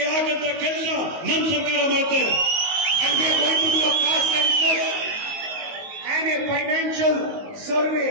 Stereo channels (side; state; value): left; late; 19 ms